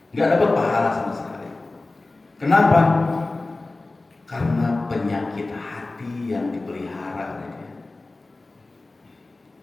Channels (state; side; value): quieter; right; 3.2 dB